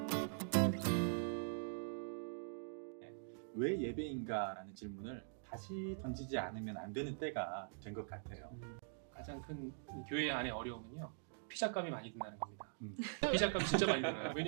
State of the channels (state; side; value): silent; left; digital silence